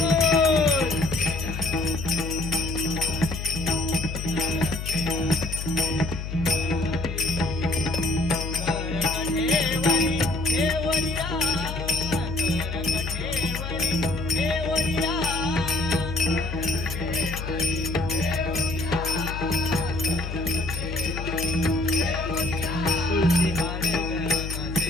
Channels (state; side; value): noise; left; hum, 6 dB below the sound